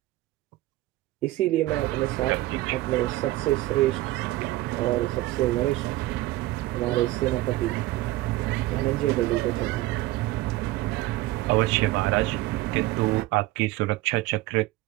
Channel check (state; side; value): quieter; left; 17.5 dB